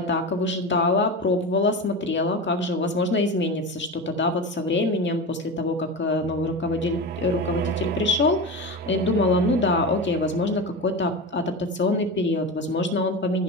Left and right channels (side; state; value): both; normal; correlation 0.24